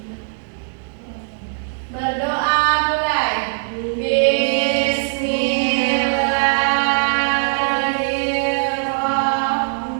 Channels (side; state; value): left; silent; digital silence